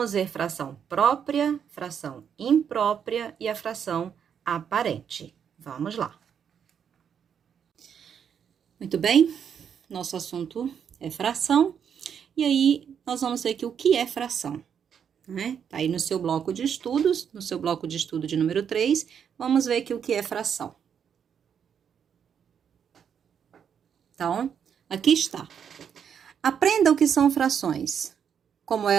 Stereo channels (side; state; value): left; quieter; 7.8 dB